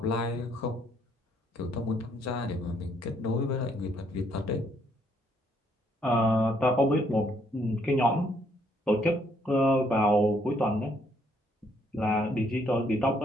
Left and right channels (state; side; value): normal; both; correlation 0.69